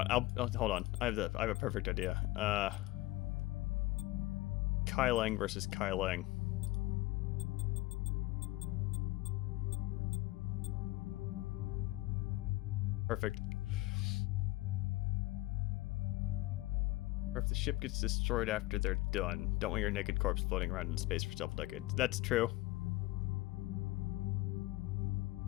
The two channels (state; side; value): quieter; right; 18.9 dB